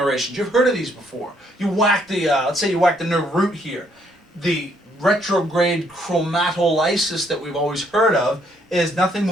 You've heard of these before. You whack the, let's say you whack the nerve root here. The retrograde chromatolysis that we've always heard of is nothing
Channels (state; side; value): normal; both; correlation 0.69